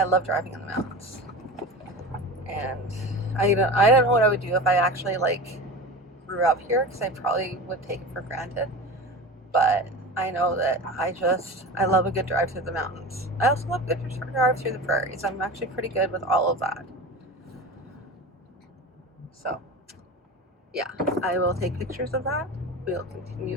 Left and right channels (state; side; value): normal; both; correlation 0.31